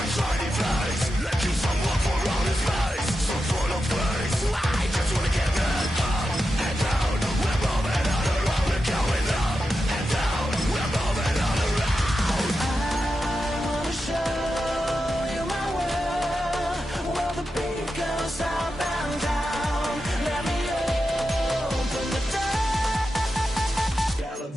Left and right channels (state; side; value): normal; both; correlation 0.89